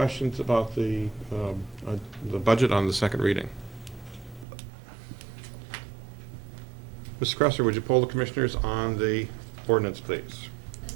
about the budget on the second reading? Ms. Cresser, would you poll the commissioners on the ordinance, please? Ms.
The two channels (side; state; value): left; drops out; at 4.5 s